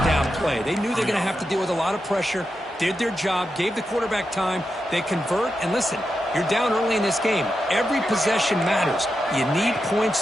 down play. They knew they're going to have to deal with a lot of pressure, did their job, gave the quarterback time. They convert, and listen, you're down early in this game. Every possession matters. You need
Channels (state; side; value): normal; both; correlation 0.88